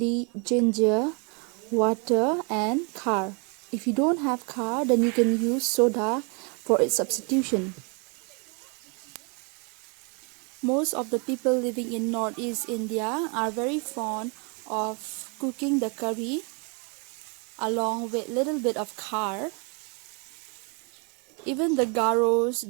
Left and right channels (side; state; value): left; quieter; 34.5 dB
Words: ginger, water and khar. If you don't have khar, then you can use soda for its substitution. Most of the people living in Northeast India are very fond of cooking the curry along with little bit of khar. Even the garos,